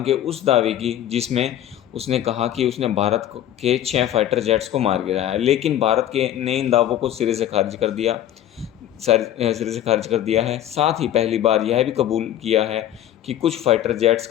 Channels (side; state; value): right; quieter; 11.7 dB